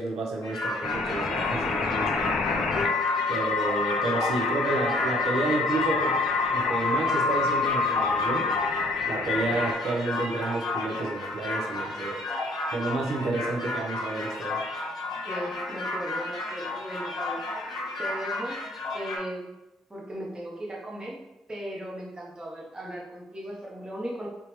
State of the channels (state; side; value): normal; both; correlation 0.58